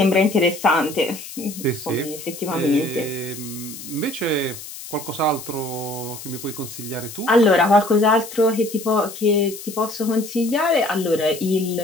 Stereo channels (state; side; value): noise; left; hiss, 13 dB below the sound